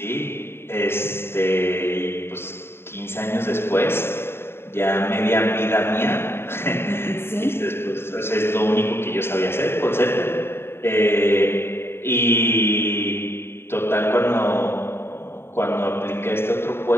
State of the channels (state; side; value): late; right; 0.11 ms